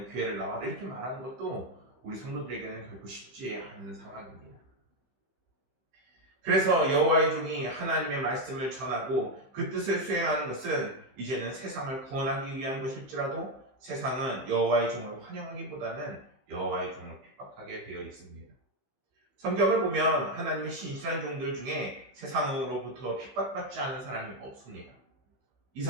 교회를 나와라 이렇게 말하는 것도 우리 성도들에게는 결코 쉽지 않은 상황입니다. 그래서 여호와의 종이 하나님의 말씀을 전하고 그 뜻을 수행하는 것은 이제는 세상을 구원하기 위한 것일지라도 세상은 여호와의 종을 환영하기보다는 여호와의 종을 핍박하게 되어 있습니다. 성경을 보면 하나님의 신실한 종들 중에 세상으로부터 핍박받지 않은 사람이 없습니다.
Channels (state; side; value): late; left; 15 ms